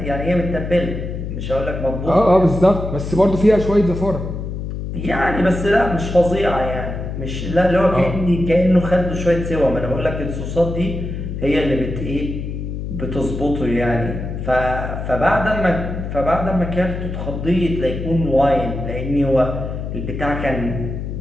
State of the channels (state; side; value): noise; left; hum, 5 dB below the sound